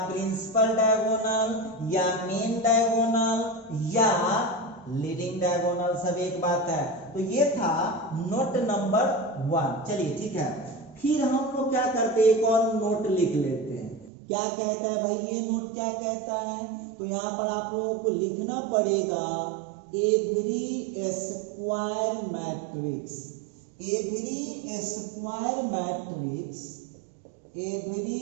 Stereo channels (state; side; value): drops out; left; at 14.1 s